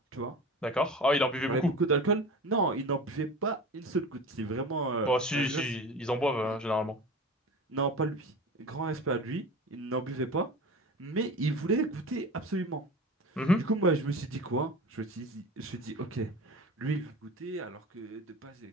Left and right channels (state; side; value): normal; both; correlation 0.34